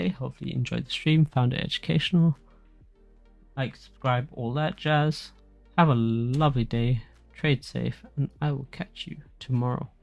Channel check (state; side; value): identical; both; correlation 1.00